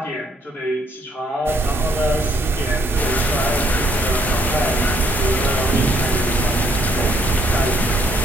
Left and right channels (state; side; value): normal; both; correlation 0.69